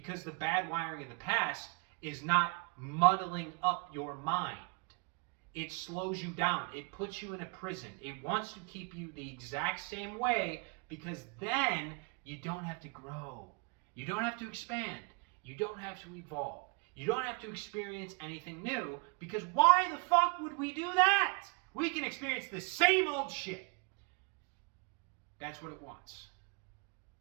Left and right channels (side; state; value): left; quieter; 33.2 dB